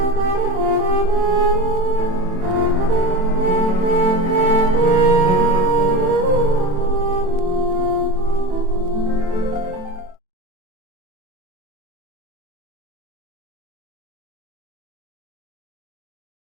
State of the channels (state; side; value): late; left; 27 ms